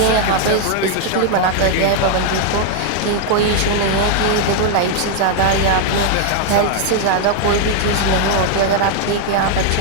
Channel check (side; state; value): both; different; correlation 0.00